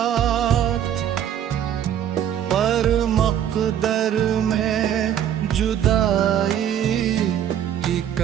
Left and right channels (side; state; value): left; quieter; 10.0 dB